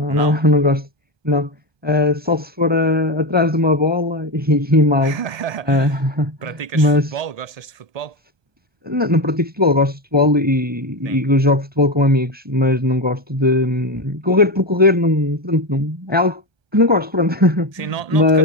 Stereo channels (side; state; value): left; late; 1.2 ms